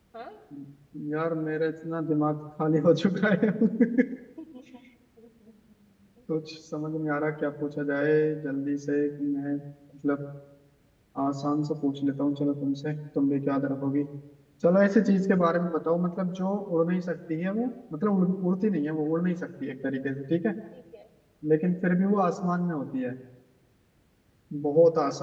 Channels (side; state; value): both; identical; correlation 1.00